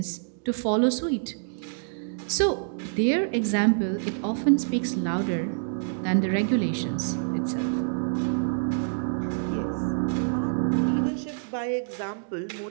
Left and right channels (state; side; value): silent; left; digital silence